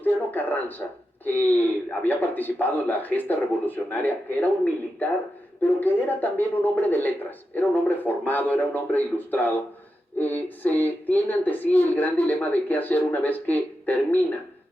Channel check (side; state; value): both; normal; correlation 0.89